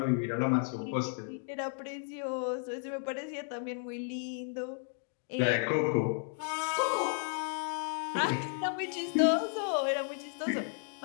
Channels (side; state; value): right; silent; 55 dB below the other